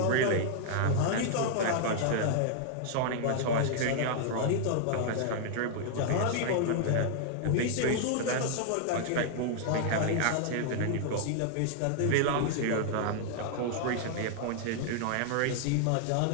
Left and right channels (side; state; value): both; different; correlation -0.01